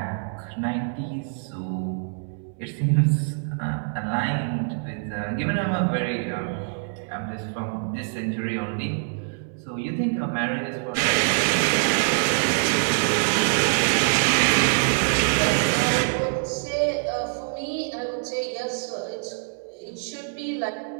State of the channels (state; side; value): silent; left; 62 dB below the other